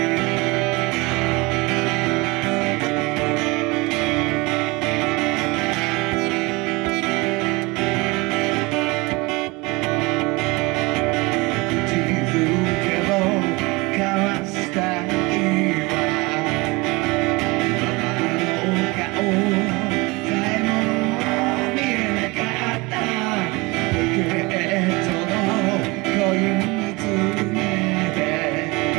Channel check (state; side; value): quieter; left; 24.6 dB